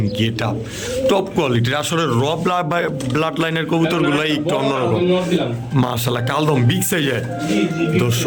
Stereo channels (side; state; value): both; identical; correlation 1.00